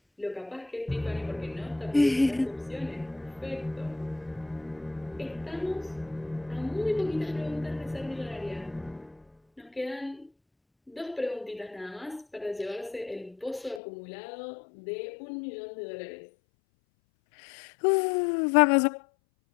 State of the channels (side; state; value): right; drops out; at 13.8 s